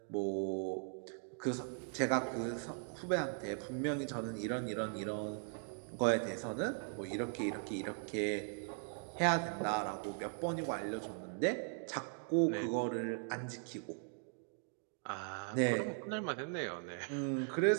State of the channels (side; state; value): left; silent; 52 dB below the other